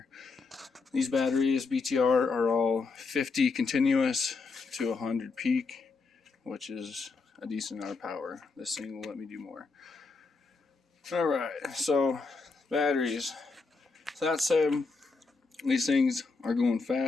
These batteries, BTR, are all 50 continuous to 100 peak, which is a decent amount of power. This thing will let me do more. Alright, so batteries. So that said, these things are going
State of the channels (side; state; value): right; quieter; 4.2 dB